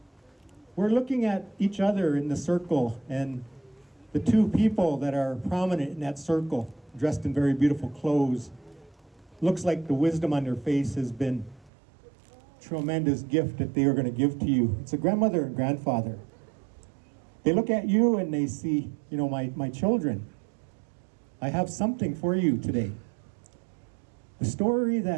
We're looking at each other in the circle, and the two people that are prominent in that circle, dressed in very beautiful clothes, looks like the wisdom on their face has been a tremendous gift that they are going to give to you. It's a grandmother and grandfather. They look at you and they see, my children. I have something for you today. The story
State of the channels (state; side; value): drops out; left; at 11.7 s